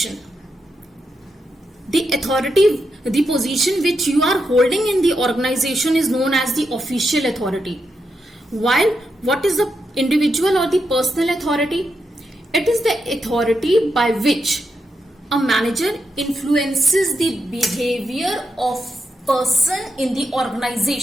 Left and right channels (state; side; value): normal; both; correlation 0.84